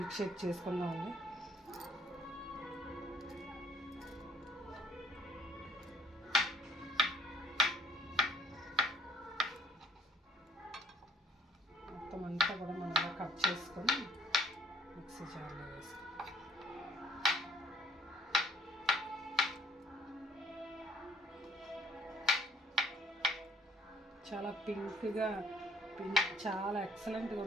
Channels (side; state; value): both; normal; correlation 0.60